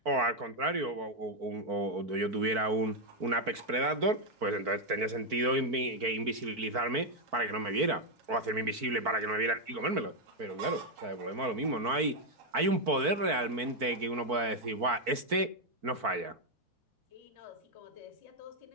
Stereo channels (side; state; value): left; late; 4.5 ms